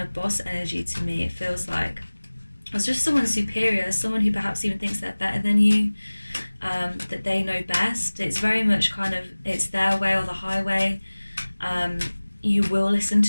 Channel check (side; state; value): both; inverted; correlation -1.00